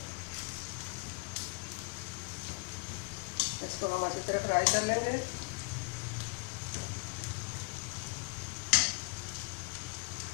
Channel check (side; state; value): right; quieter; 33.0 dB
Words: इसको हम अच्छी तरह फ्राई कर लेंगे।